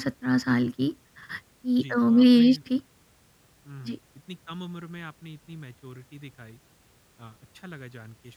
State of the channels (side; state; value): both; identical; correlation 1.00